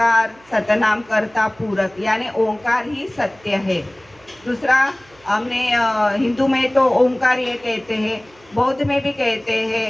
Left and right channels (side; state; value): right; noise; hum, 29 dB below the sound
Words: सतनाम करता पूरक, यानी ओंकार ही सत्य है। दूसरा हमने हिंदू में तो ओंकार ये कहते हैं, बौद्ध में भी कहते हैं